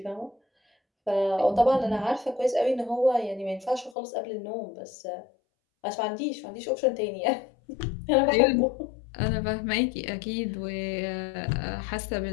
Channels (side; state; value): right; drops out; at 4.0 s